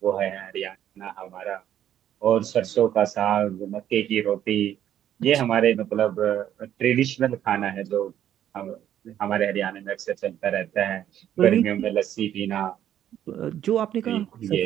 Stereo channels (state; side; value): quieter; left; 10.9 dB